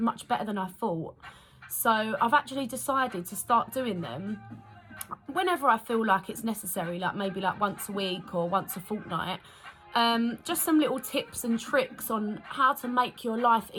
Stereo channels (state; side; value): identical; both; correlation 1.00